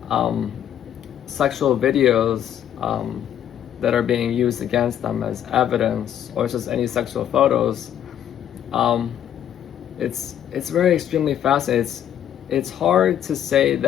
videos that are being used against them as evidence, or just any sexual photos. It's very extremely fascinating. It's hard to say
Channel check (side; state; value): right; quieter; 10.3 dB